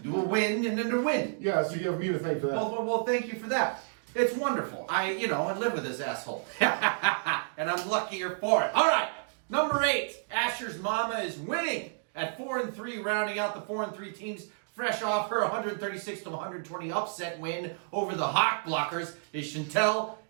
Do a win and then a win. Yeah, so you have me to thank for that. Well, thank you for that. It's wonderful. I live with this asshole. And I'm luckier for it. All right. Number 8. Asher's mama is winning at 4 and 3, rounding out the 4 and 3 teams Fresh off her 136-120 upset win over the Hawk Blockers is Chantel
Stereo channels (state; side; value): silent; left; digital silence